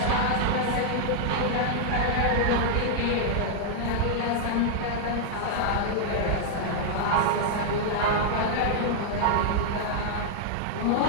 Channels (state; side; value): different; both; correlation -0.01